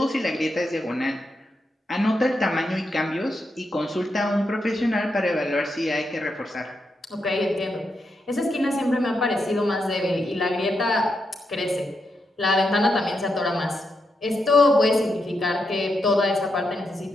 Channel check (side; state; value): both; normal; correlation 0.84